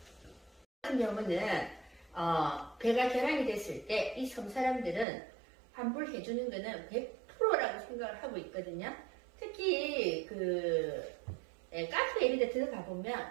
같은 경우는 배가 결항이 됐을 때 이 섬 사람들은 환불해 주는 거는 100%라고 생각을 하고 있거든요. 특히 카페 이런 데 들어가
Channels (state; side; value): drops out; left; at 5.1 s